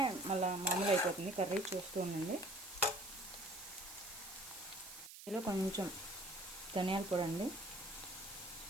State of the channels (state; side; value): noise; right; hiss, 14 dB below the sound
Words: మళ్ళీ మామూలు అయిపోతుంది కర్రీ. చూస్తూ ఉండండి. ఇందులో కొంచెం ధనియాల పొడి అండి.